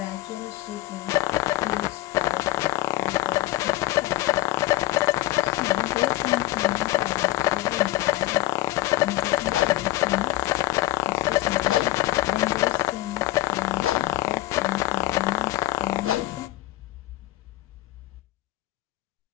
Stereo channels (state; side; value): quieter; right; 17.4 dB